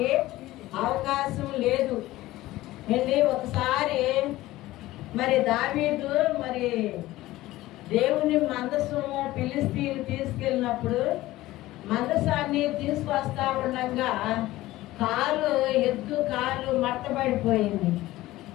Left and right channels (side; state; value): right; quieter; 17.0 dB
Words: అవకాశం లేదు. వెళ్ళి ఒకసారి మరి దావీదు మరి దేవుని మందసము ఫిలిస్తీన్లు తీసుకెళ్ళినప్పుడు మందసాన్ని తీసుకొస్తా ఉండగా ఎద్దు కాలు మడతబడిపోయింది.